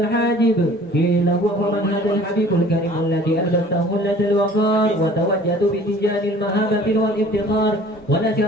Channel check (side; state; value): both; normal; correlation 0.49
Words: قيل هو من هذا الحبيب الكريم الذي ألبسته خلة الوقار وتوجد بتجاه المهابة والافتخار